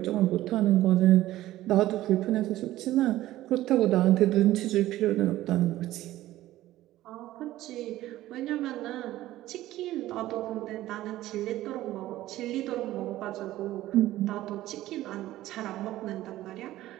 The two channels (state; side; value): quieter; left; 15.2 dB